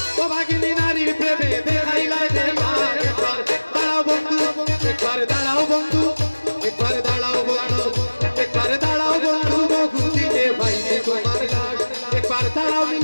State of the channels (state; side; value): inverted; both; correlation -1.00